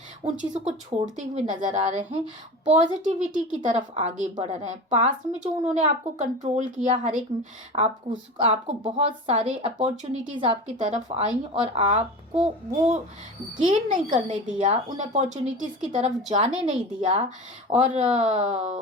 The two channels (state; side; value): normal; both; correlation 0.31